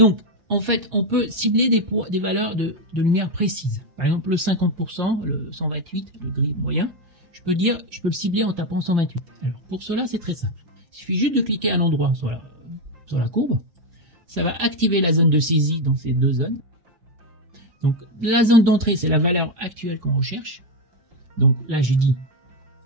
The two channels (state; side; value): late; left; 5.7 ms